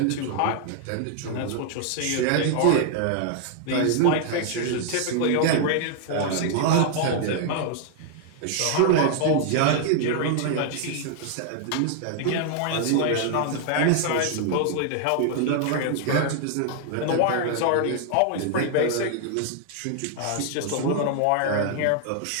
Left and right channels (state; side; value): different; both; correlation 0.00